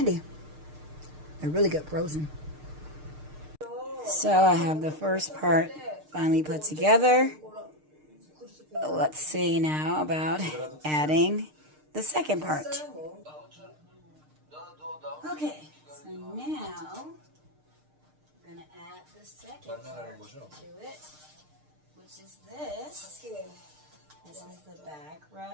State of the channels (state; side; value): late; left; 6.6 ms